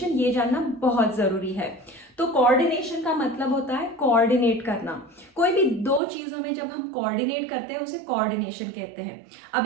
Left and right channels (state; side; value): drops out; left; at 6.0 s